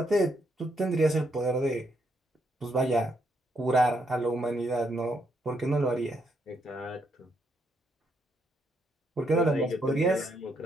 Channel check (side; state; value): both; normal; correlation 0.76